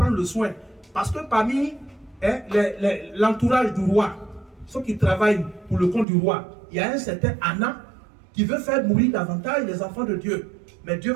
le soin. Parce que parmi l'entourage du roi, ceux qui travaillent pour le compte du roi, il y a un certain Anna qui veut faire mourir davantage les enfants de Dieu. Mais Dieu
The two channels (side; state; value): left; drops out; at 6.1 s